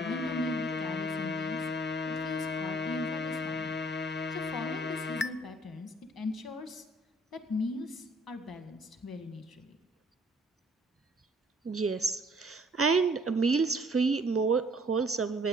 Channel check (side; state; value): both; normal; correlation 0.59